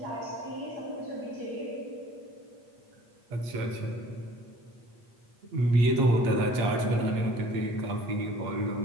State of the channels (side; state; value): left; late; 8.3 ms